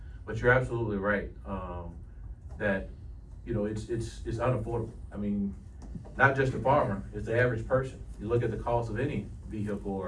But you're absolutely right. that, you know, it's unaffordable. I mean, not just the farmer, it's the average person. You look at the cost of any vehicle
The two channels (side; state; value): both; identical; correlation 1.00